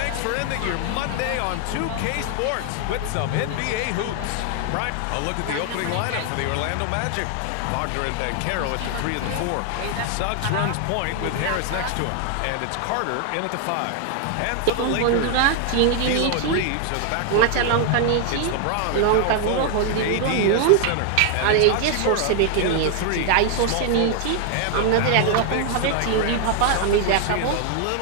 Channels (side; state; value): both; different; correlation 0.00